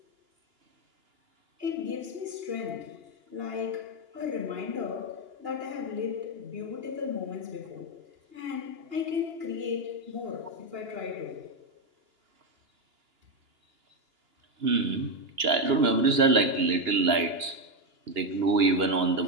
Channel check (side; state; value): left; late; 2.9 ms